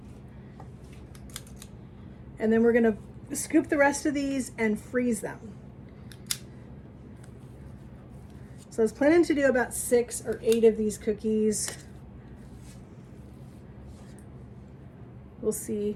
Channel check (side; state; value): both; identical; correlation 1.00